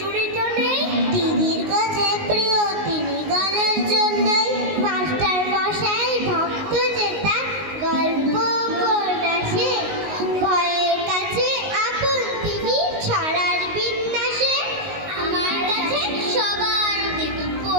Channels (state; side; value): late; left; 19 ms